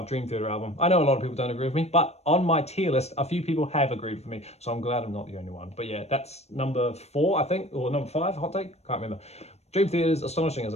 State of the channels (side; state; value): right; late; 0.31 ms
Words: Dream Theater album. I know a lot of people don't agree with me, but on my tier list, a few people have agreed with me, so I'm glad I'm not the only one. But yeah, that's number 4, I think, or number 5, hot take? Can't remember. Dream Theater's Astonishing as